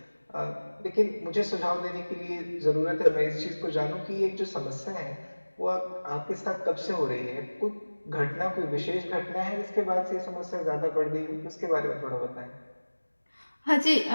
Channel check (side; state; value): both; inverted; correlation -1.00